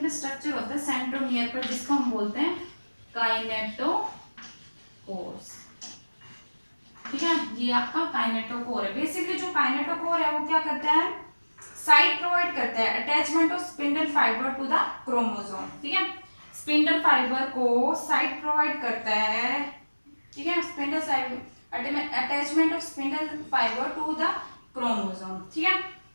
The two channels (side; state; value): both; inverted; correlation -1.00